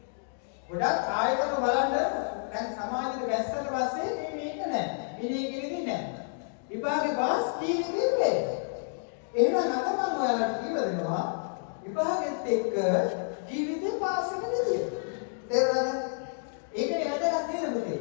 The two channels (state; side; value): silent; right; digital silence